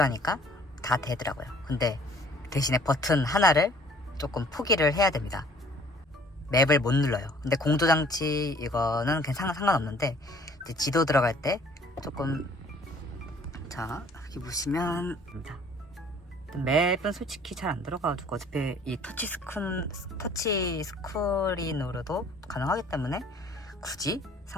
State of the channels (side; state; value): both; normal; correlation 0.55